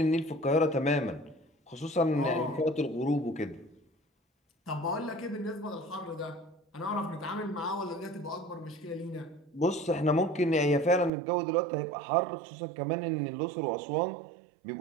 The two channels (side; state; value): left; drops out; at 11.1 s